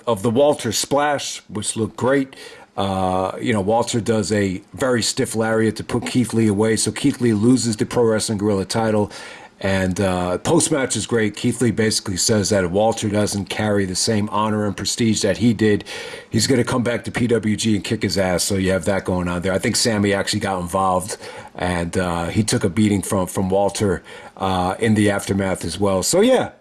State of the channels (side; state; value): both; identical; correlation 1.00